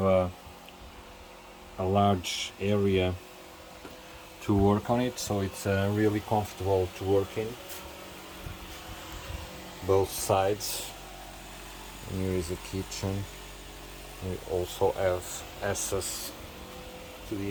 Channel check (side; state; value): both; identical; correlation 1.00